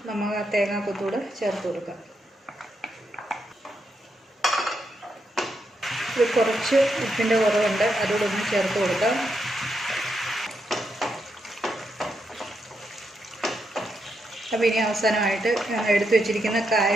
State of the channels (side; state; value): both; normal; correlation 0.82